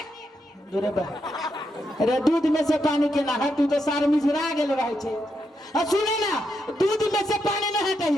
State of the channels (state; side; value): normal; both; correlation 0.82